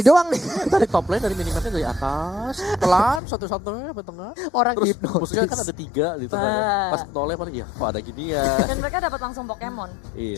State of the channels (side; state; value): right; drops out; at 3.2 s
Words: doang nih. Dari top lane, dari minimapnya dari atas, pelan, satu-satunya sampai tengah. Orang Terus hipnotis. musuhnya kan ada 3 di tengah. Bah. Pas nolnya paling ya, kok ada gini ya. Dan mereka dapat langsung Pokemon.